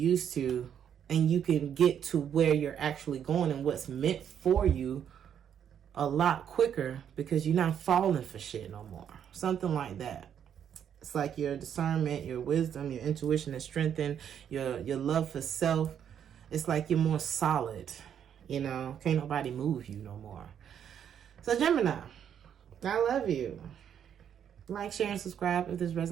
to. And you can get to where you're actually going and what's meant for you a lot quicker because you're not falling for shit no more. Something like that. It's like your discernment, your wisdom, your intuition is strengthened, your love for self. It's like you're more solid. You know, can't nobody move you no more. So Gemini, I love you. Like, share, and subscribe if this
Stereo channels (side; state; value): left; quieter; 8.8 dB